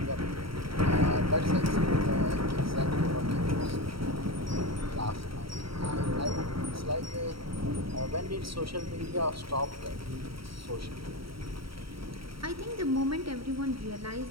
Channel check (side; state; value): left; late; 0.75 ms